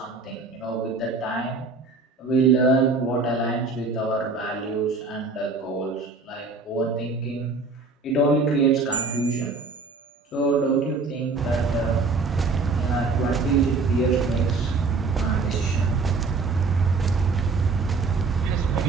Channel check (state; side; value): quieter; left; 4.1 dB